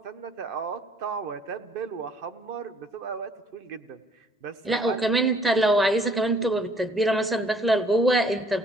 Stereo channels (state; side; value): normal; both; correlation 0.60